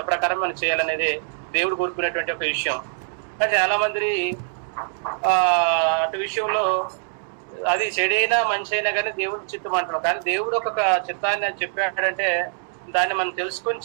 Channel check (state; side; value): silent; left; 63 dB below the other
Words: ప్రకారం మనం చేయాలనేది దేవుడు కోరుకునేటువంటి ఒక విషయం. కానీ చాలా మంది అటు విషయంలో అది చెడైనా మంచి అయినా కానీ దేవుడి చిత్తం అంటున్నాం. కానీ దేవుడు ఒక చిత్తాన్ని చెప్పాడంటే దాన్ని మనం తెలుసుకొని